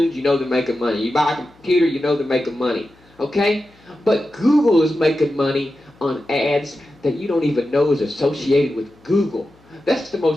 you know they're making money. You buy a computer, you know they're making money. Okay? But Google is making money on ads that you don't even know is associated with Google. That's the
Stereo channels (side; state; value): left; noise; hum, 30 dB below the sound